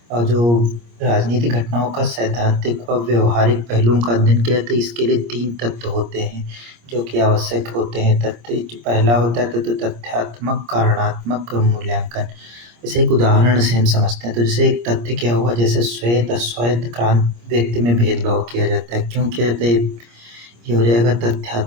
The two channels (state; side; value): late; left; 25 ms